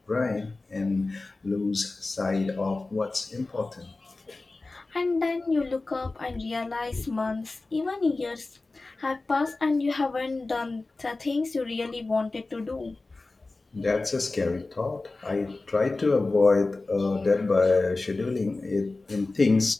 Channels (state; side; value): quieter; right; 3.4 dB